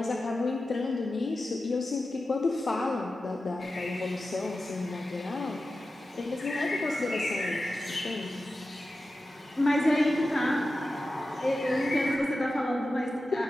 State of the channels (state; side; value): normal; both; correlation 0.93